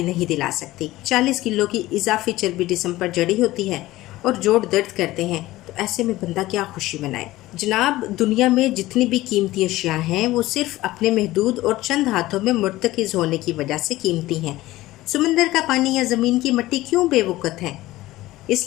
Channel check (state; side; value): quieter; right; 17.2 dB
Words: نہیں دلا سکتی۔ 40 کلو کی اضافی چربی جسم پر جڑی ہوتی ہے اور جوڑ درد کرتے ہیں، تو ایسے میں بندہ کیا خوشی منائے؟ جناب، دنیا میں جتنی بھی قیمتی اشیاء ہیں وہ صرف اپنے محدود اور چند ہاتھوں میں مرتکز ہونے کی وجہ سے قیمتی ہیں۔ سمندر کا پانی یا زمین کی مٹی کیوں بے وقت ہے؟ اس